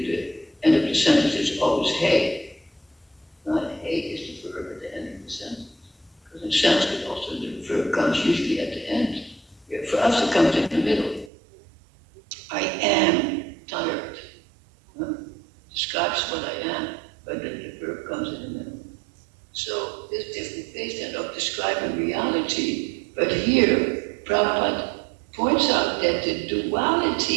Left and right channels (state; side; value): drops out; left; at 11.3 s